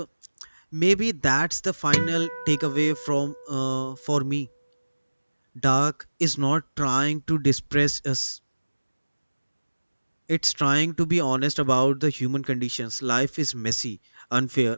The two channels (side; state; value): both; inverted; correlation -1.00